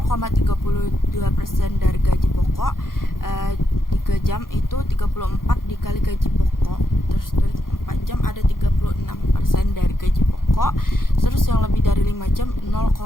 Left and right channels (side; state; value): right; late; 0.91 ms